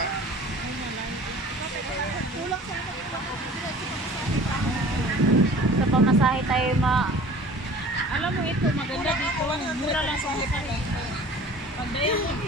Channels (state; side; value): normal; both; correlation 0.45